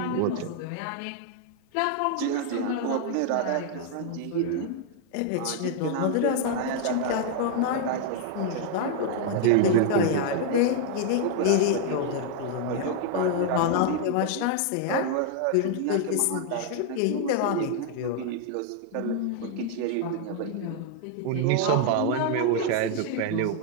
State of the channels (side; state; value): both; different; correlation 0.00